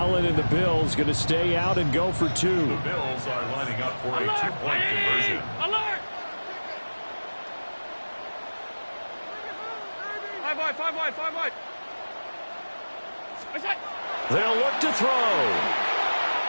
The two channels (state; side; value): inverted; both; correlation -1.00